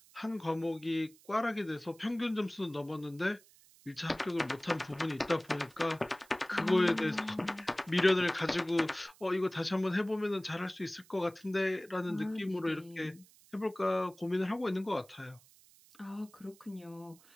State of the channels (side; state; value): right; noise; hiss, 26 dB below the sound